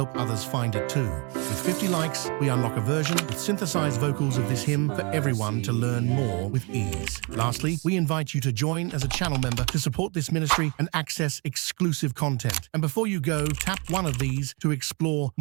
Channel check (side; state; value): left; quieter; 31.2 dB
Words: others find it too. With 50 likes, we unlock a version with synthesized vocals of this hymn for everyone to learn more with ease. Lastly, we invite you to join as a channel member to support this ministry and access exclusive content. And before you go, tap one of these to explore